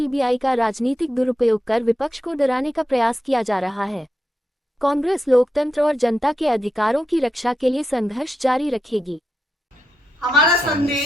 का राजनीतिक दुरुपयोग कर विपक्ष को डराने का प्रयास किया जा रहा है। कांग्रेस लोकतंत्र और जनता के अधिकारों की रक्षा के लिए संघर्ष जारी रखेगी। हमारा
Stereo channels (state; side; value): normal; both; correlation 0.86